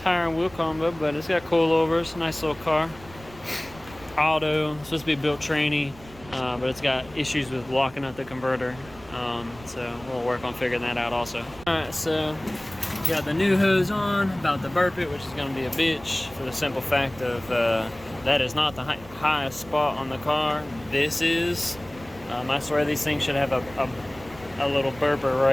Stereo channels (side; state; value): right; noise; rumble, 20 dB below the sound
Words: and wheel combo, but it's got coilovers. Nice little car. Auto, it's supposed to be built tranny, but it's got issues with locking up the converter, so we'll work on figuring that out also. Alright, so Got the new hose on, about to burp it, which is going to be a bitch for the simple fact of that is not the highest spot on the car. This is. I swear these things should have a little burper